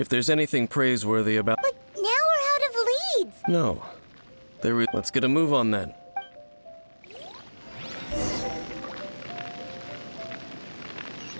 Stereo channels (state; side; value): inverted; both; correlation -1.00